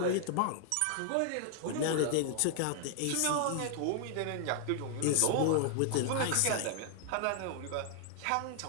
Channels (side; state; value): both; different; correlation -0.01